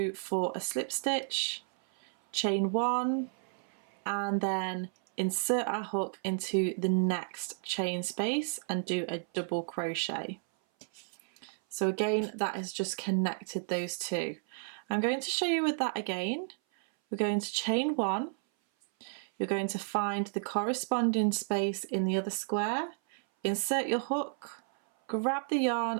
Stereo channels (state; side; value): silent; left; 56 dB below the other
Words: for a slip stitch, chain 1, and then insert our hook into the next chain space and do a double crochet. So again, that has just connected those two. I'm going to show you with that again. We're going to chain 1, you're going to find the corresponding space in the other square, insert your hook, grab the